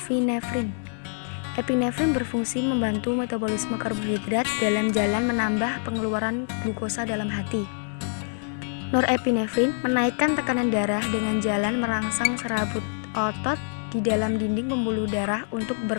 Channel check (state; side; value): silent; right; digital silence